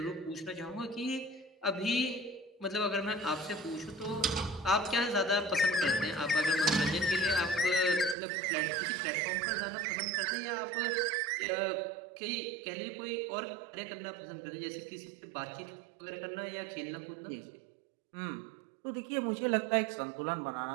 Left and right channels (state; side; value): drops out; left; at 8.2 s